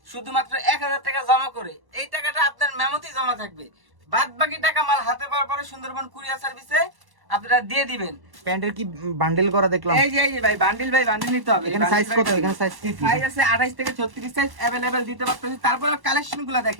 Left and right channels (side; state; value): left; late; 1.1 ms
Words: শুধুমাত্র 1000 টাকা জমা করে। এই টাকাটা আপনার মেমোতেই জমা থাকবে, বাদ বাকি টাকা মাল হাতে পাওয়ার পরে সুন্দরবন কুরিয়ার সার্ভিসে আপনারা দিয়ে দিবেন। প্যান্টের কি বান্ডেল করা দেখলাম? এই যে ভাই বান্ডিল নিতে হবে। এখানে সাইজ কত? এখানে সাইজ কি? সাইজ আছে 28 থেকে 36 সাইজ अवेलेबल দিতে পারতেছি। তারপরে কালেকশনগুলো